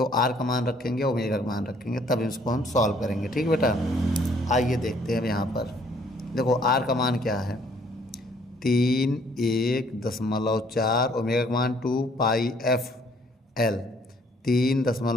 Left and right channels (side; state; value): both; normal; correlation 0.62